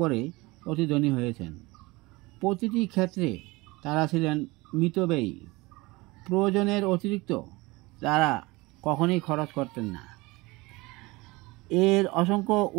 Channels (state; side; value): quieter; left; 22.7 dB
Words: অতি ধনী হয়েছেন। প্রতিটি ক্ষেত্রে তারা ছিলেন মিতব্যয়ী। প্রয়োজনের অতিরিক্ত তারা কখনোই খরচ করতেন না। এর অসংখ্য